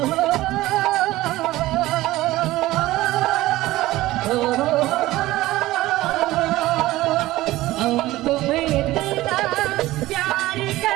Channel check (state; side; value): quieter; left; 17.2 dB